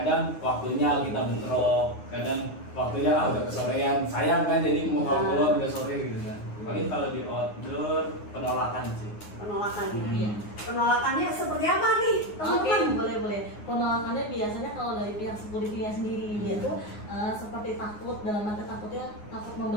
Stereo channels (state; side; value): late; right; 9.6 ms